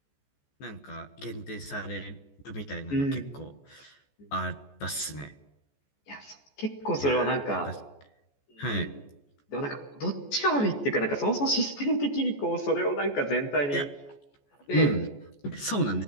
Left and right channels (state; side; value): late; right; 14 ms